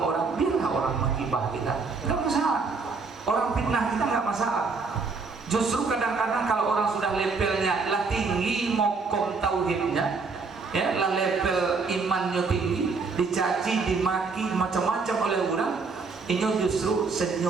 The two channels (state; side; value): quieter; left; 4.5 dB